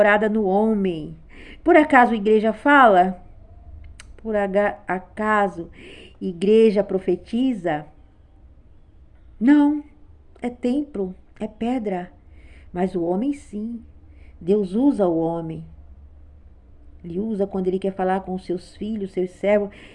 no homem. Por acaso a igreja fala? Por acaso igreja profetiza? Não, é templo, é pedra. Mas o homem sim. Deus usa o homem. Ele usa quando ele quer falar com os seus filhos, seus servos.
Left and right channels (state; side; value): identical; both; correlation 1.00